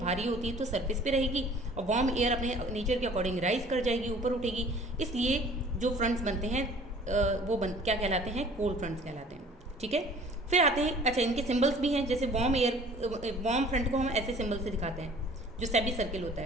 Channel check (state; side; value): normal; both; correlation 0.51